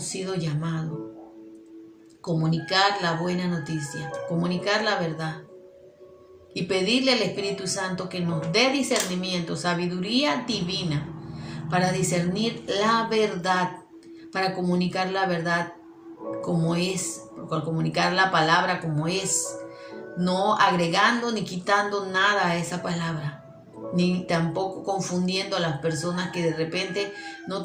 sido llamados. Comunicar la buena noticia, comunicar la verdad y pedirle al Espíritu Santo que nos dé discernimiento, sabiduría divina para discernir la verdad, para comunicar la verdad como es, para comunicar la palabra como es, no agregando ni quitando nada a esa palabra, ni tampoco confundiendo a las personas que de repente no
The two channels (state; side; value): identical; both; correlation 1.00